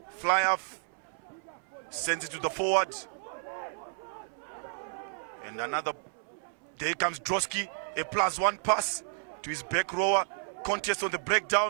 fly half. Sends it to the forward. And another. There comes Drosky. A +1 pass to his back rower. Contest on the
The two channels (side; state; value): left; silent; 57 dB below the other